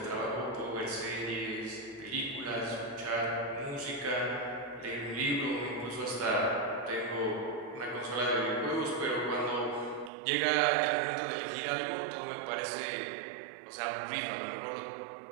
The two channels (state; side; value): drops out; left; at 10.1 s